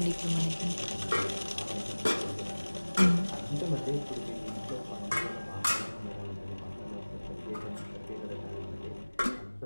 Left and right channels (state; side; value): inverted; both; correlation -1.00